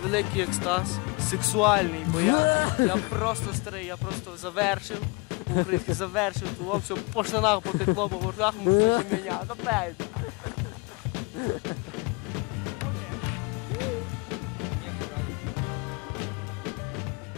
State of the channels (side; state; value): right; quieter; 28.3 dB